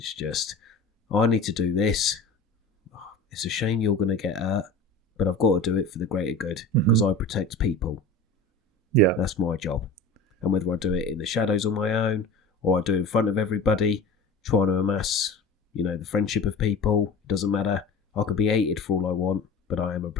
just, I need to do this. It's a shame you're going to get hurt, but I've got to do it for the greater good because I protect people. Yeah. That's my job. And whether I do it in the shadows on my own or I do it in front of everybody, trying to amass, the friendship of people, doesn't matter. I could be hated for all I want, but I am a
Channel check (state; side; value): quieter; right; 3.3 dB